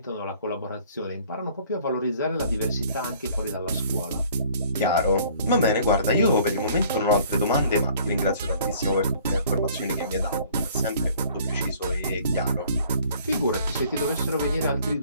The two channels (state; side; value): inverted; both; correlation -0.55